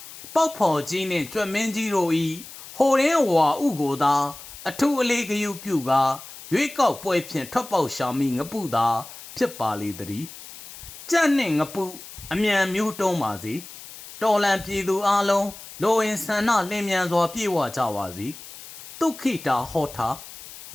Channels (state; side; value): noise; left; hiss, 15 dB below the sound